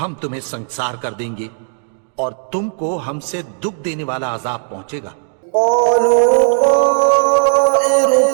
ہم تمہیں سنسار کر دیں گے اور تم کو ہم سے دکھ دینے والا عذاب پہنچے گا۔ قالوا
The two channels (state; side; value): silent; left; digital silence